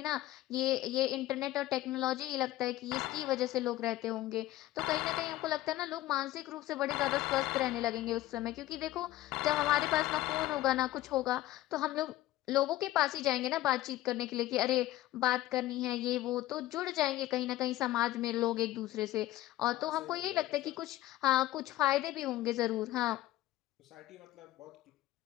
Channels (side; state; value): right; quieter; 15.7 dB